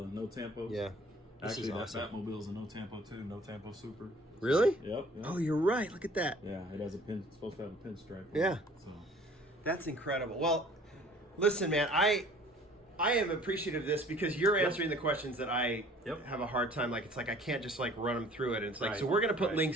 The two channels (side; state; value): both; normal; correlation 0.52